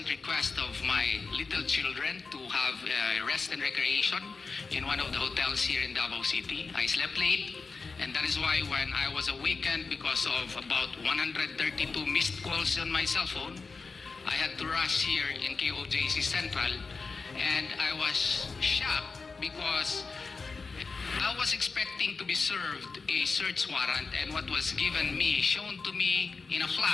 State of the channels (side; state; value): right; quieter; 4.4 dB